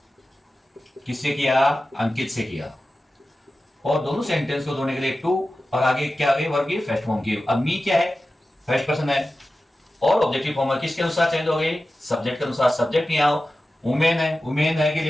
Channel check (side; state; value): both; normal; correlation 0.94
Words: किससे किया अंकित से किया, और दोनों सेंटेंस को जोड़ने के लिए टू और आगे क्या आ गई वर्ब की फर्स्ट फॉर्म की। अब मी क्या है फर्स्ट पर्सन है, और ऑब्जेक्टिव फॉर्म है किसके अनुसार चेंज हो गई सब्जेक्ट के अनुसार। सब्जेक्ट नहीं आओ वुमेन है, वुमेन है के